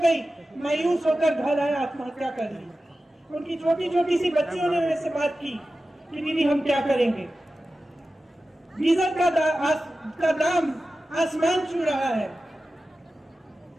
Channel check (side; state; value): both; normal; correlation 0.94